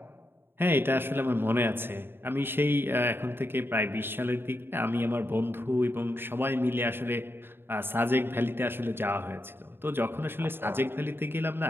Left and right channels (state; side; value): late; left; 0.11 ms